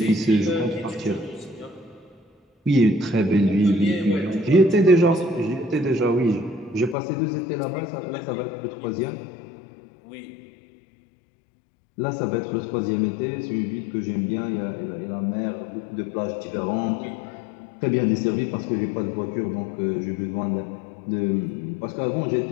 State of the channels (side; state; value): right; drops out; at 7.0 s